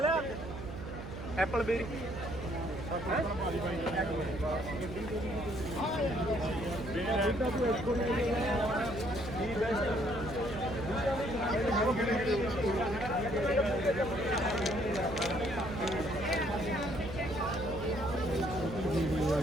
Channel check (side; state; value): right; noise; hum, 9 dB below the sound